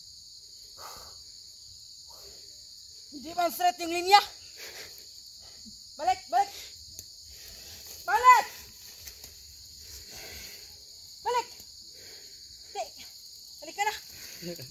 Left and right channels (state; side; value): identical; both; correlation 1.00